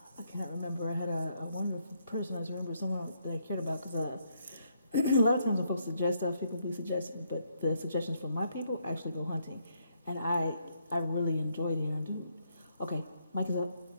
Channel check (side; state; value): both; inverted; correlation -0.74